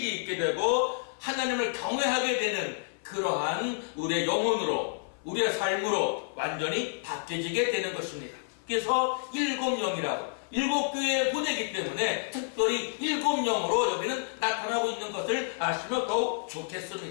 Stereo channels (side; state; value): right; silent; 58 dB below the other